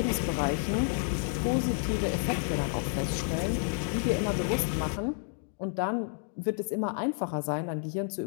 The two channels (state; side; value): silent; right; 58 dB below the other